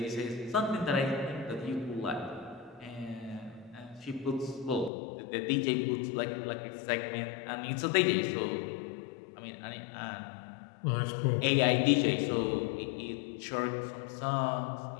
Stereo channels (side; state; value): right; drops out; at 4.9 s